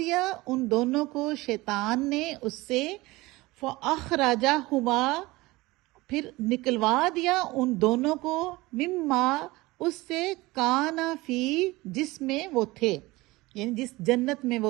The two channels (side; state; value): left; quieter; 20.8 dB